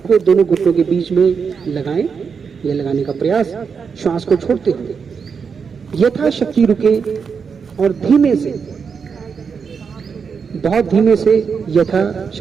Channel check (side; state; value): left; quieter; 6.0 dB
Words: को दोनों घुटनों के बीच में लगाएं। यह लगाने का प्रयास श्वास को छोड़ते हुए यथाशक्ति रुके और धीमे से, बहुत धीमे से